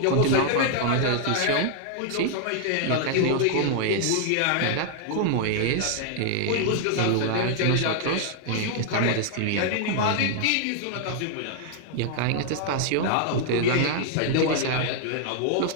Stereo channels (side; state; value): both; different; correlation 0.00